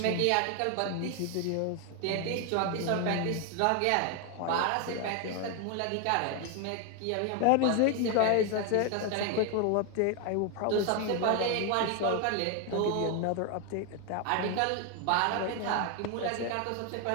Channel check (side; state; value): both; different; correlation 0.01